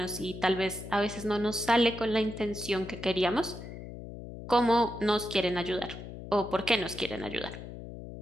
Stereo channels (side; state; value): left; noise; hum, 11 dB below the sound